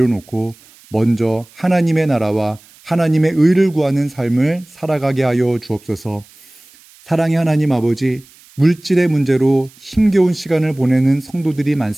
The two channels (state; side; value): noise; right; hiss, 26 dB below the sound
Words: 먼저 하나님의 나라와 하나님의 의를 구하는 삶을 살아가게 하여 주옵소서. 사랑의 하나님 아버지, 물질의 문제로 힘겨운 시간을 보내는 성도들이